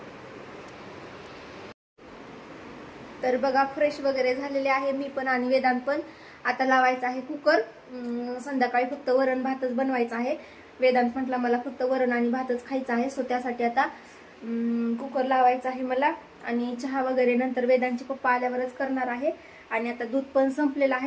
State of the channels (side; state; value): both; identical; correlation 1.00